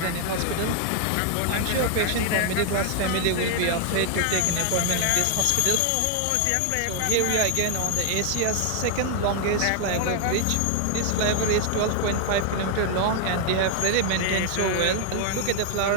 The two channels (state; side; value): different; both; correlation 0.00